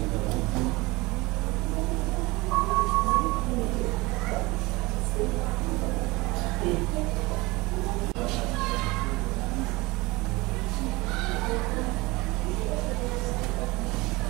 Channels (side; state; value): left; quieter; 22.9 dB